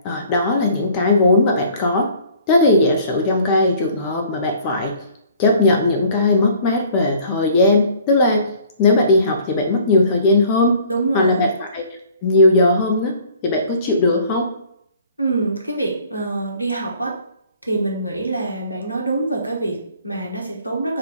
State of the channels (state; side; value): inverted; both; correlation -0.54